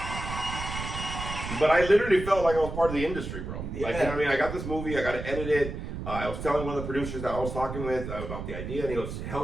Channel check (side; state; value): right; noise; rumble, 7 dB below the sound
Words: But I literally felt like I was part of the industry, bro. Yeah. Like, you know what I mean? I got this movie. I got to edit it. I was telling one of the producers that I was talking with about the idea, and he goes,